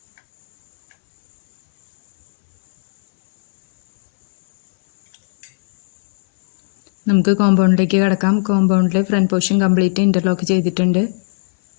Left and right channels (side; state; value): right; silent; 68 dB below the other